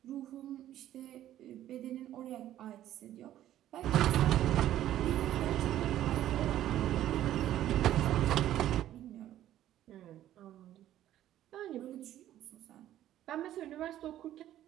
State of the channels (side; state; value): left; quieter; 12.6 dB